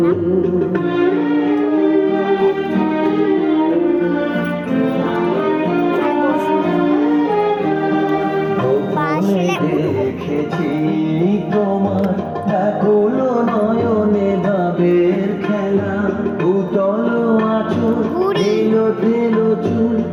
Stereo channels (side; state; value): both; identical; correlation 1.00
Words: দেখেছি তোমার ব্যাকুল নয়নে ভাবের খেলা, উতল আঁচল এলো তেলো চুল